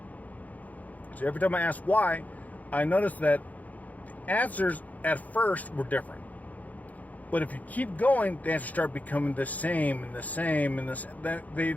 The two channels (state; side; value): late; right; 0.077 ms